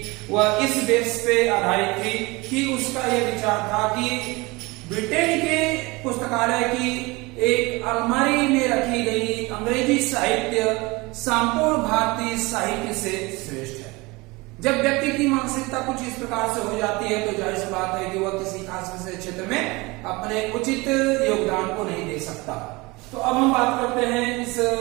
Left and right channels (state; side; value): quieter; left; 24.0 dB